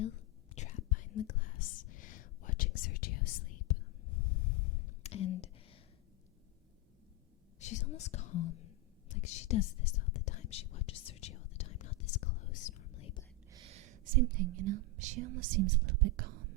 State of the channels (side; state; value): both; normal; correlation 0.05